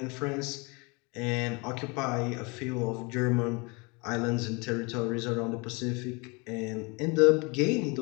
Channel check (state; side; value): quieter; right; 29.0 dB